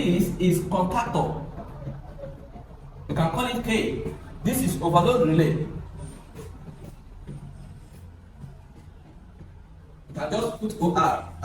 is contactor. You can call it K. This is overload relay. You can just put OR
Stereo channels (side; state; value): both; identical; correlation 1.00